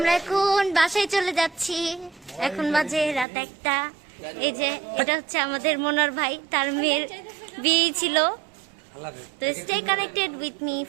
এখন বাসায় চলে যাচ্ছি। এখন বাজে রাত 1টা। এই যে এটা হচ্ছে আমাদের মনোর ভাই, তার মেয়ের বিয়ে ছিল। তো stay connected with me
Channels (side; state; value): left; drops out; at 3.2 s